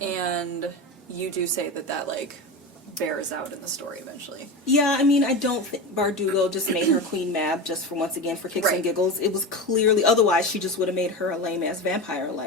And you do say that like bears out in the story eventually. Yeah, I mean, I don't think Bardugo just made her Queen Mab just for once again for kicks and giggles. It was clearly, otherwise she just would have made her a lame ass vampire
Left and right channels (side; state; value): both; normal; correlation 0.23